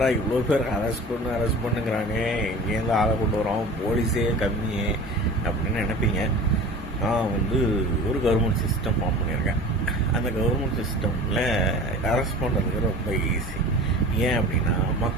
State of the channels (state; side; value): normal; both; correlation 0.38